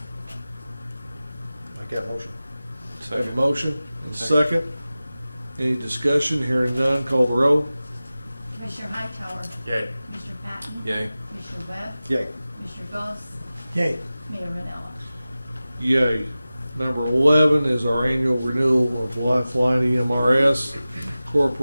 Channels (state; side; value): inverted; both; correlation -0.96